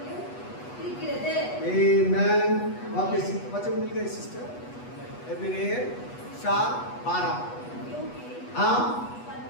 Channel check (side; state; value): right; late; 8.2 ms